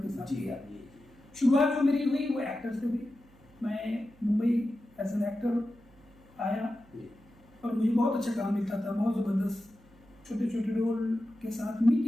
के साथ किया। शुरुआत जो मेरी हुई वो एक्टर से हुई। मैं मुंबई एज एन एक्टर आया और मुझे बहुत अच्छा काम मिलता था, बहुत ज़बरदस्त छोटे छोटे रोल के साथ,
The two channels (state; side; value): noise; right; hum, 27 dB below the sound